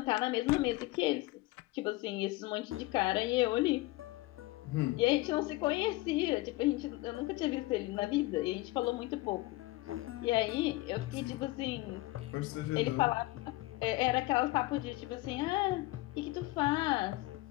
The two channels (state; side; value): quieter; right; 19.9 dB